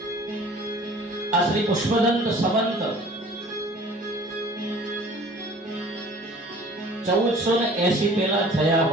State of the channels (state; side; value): normal; both; correlation 0.48